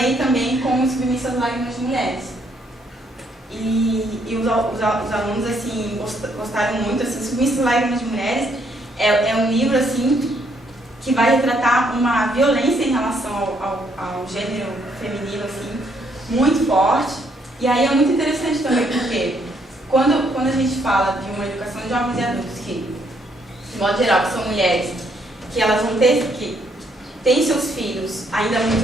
também com os Submissas Lágrimas de Mulheres. E os alunos, assim, gostaram muito, assim, Submissas Lágrimas de Mulheres é um livro, assim, que vai retratar uma violência em relação ao gênero feminino, assim, muito forte. E aí é muito interessante também, porque quando a gente fala de uma educação de jovens e adultos, que, de modo geral, que são mulheres, que elas vão ter, que têm seus filhos ainda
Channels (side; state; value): both; normal; correlation 0.71